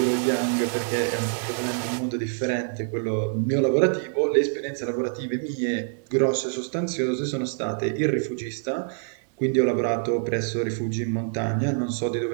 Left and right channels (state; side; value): silent; left; digital silence